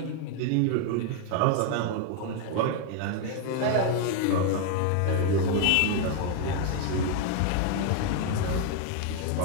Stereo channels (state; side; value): different; both; correlation 0.01